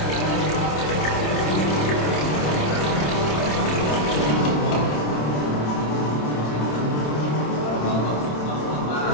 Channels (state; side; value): late; right; 27 ms